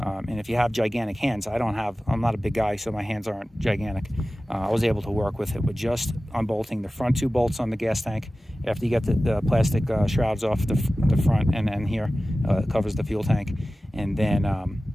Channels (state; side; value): normal; both; correlation 0.96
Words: if you have gigantic hands, I'm not a big guy, so my hands aren't gigantic. I was able to work with it with just unbolting the front 2 bolts on the gas tank. After you get the plastic shrouds off the front, and then here covers the fuel tank. And then